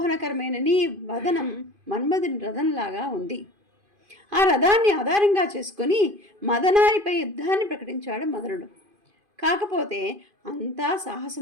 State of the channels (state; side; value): late; left; 2.5 ms